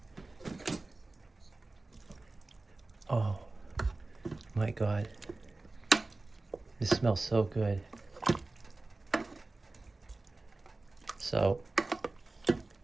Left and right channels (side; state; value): left; quieter; 3.2 dB